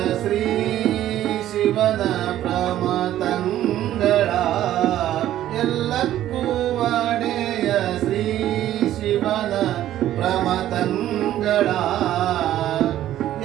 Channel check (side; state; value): left; quieter; 12.7 dB